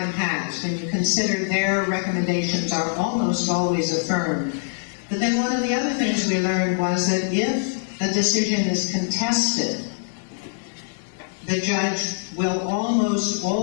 has, when you consider their recommendations are almost always affirmed. But then one of the other things we learned was that if a decision is contested, the judge will almost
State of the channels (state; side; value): silent; right; digital silence